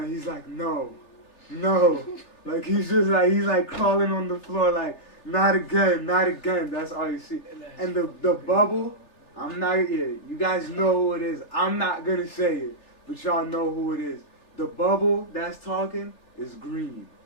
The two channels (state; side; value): late; right; 3.4 ms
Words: he's like, no. Like he's like crawling on the floor like, not again. That's all you see. And the bubble, I'm not, yeah, you guys know who it is. I'm not gonna say it, but y'all know who it is. The bubble that's talking is green.